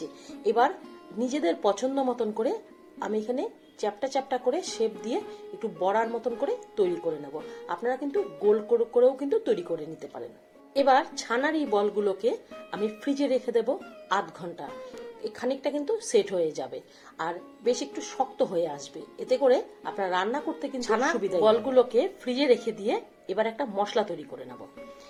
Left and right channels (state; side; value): identical; both; correlation 1.00